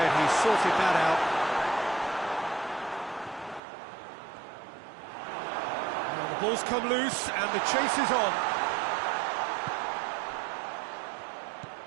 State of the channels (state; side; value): drops out; left; at 3.6 s